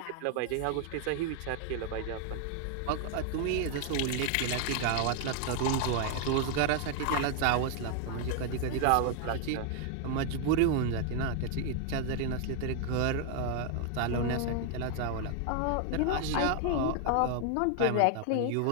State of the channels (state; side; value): different; both; correlation 0.00